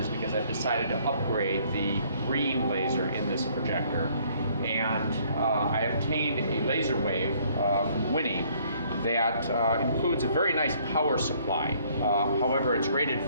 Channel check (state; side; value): inverted; both; correlation -0.62